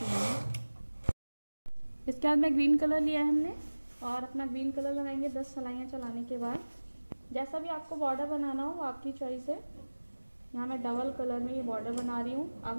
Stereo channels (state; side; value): inverted; both; correlation -1.00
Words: इसके बाद में ग्रीन कलर लिया है हमने और अपना ग्रीन कलर लगाएंगे 10 सलाइयाँ चलाने के बाद। जैसा भी आपको बॉर्डर बनाना हो आपकी चॉइस है। यहाँ मैं डबल कलर में ये बॉर्डर बना रही हूँ। अब